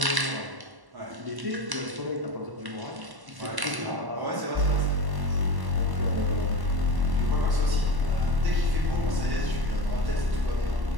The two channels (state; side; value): late; left; 1.1 ms